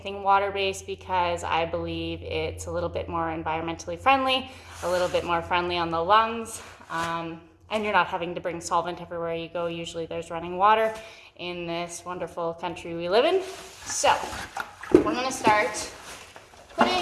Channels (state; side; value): identical; both; correlation 1.00